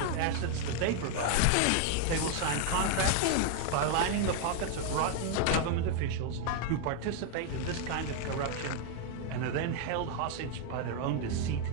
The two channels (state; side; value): different; both; correlation 0.00